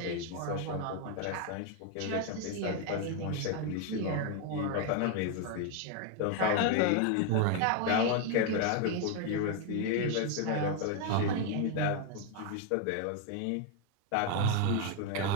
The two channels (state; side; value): different; both; correlation 0.01